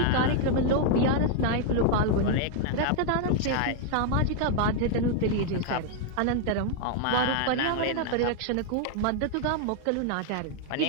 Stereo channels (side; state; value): both; different; correlation 0.00